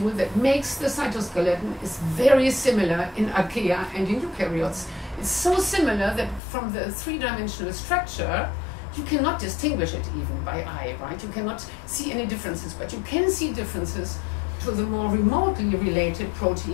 that makes the cytoskeleton is very similar in archaea and in eukaryotes. It's so similar that from the three-dimensional structure, you cannot distinguish it even by eye, right? You cannot see any differences, but you can see differences to the more remotely related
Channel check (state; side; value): drops out; right; at 6.4 s